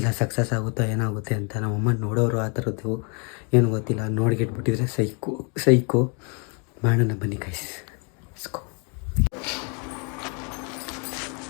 ಸಕ್ಸಸ್ ಆಗುತ್ತೋ ಏನಾಗುತ್ತೆ ಅಂತ. ನಮ್ಮಮ್ಮ ನೋಡೋರು ಆ ಥರದ್ದು ಏನು ಗೊತ್ತಿಲ್ಲ. ನೋಡ್ಗಿಟ್ಬಿಟ್ಟಿದ್ರೆ ಸೈಕು ಮಾಡೋಣ ಬನ್ನಿ ಗೈಸ್. ಇಸ್ಕೋ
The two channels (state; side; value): quieter; right; 35.3 dB